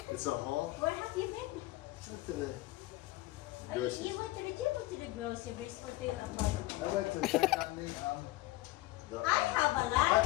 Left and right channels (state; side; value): quieter; right; 18.4 dB